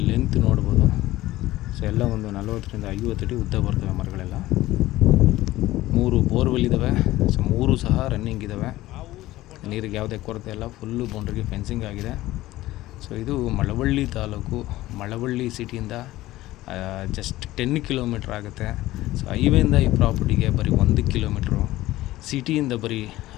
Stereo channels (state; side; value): quieter; right; 16.6 dB